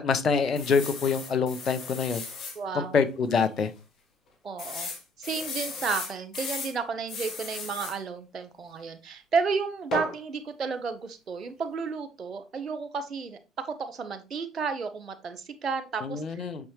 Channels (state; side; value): normal; both; correlation 0.61